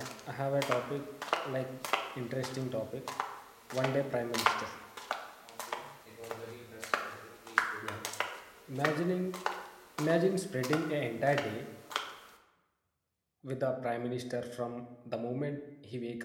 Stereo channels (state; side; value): identical; both; correlation 1.00